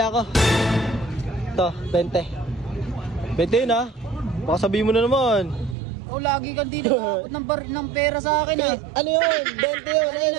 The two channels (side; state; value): left; drops out; at 5.8 s